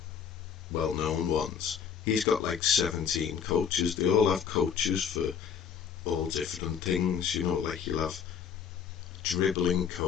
well-known ones. He's got like 17 coaches. They all have coaches for all different things, you know, like you'll have dribbling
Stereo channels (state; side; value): quieter; right; 7.6 dB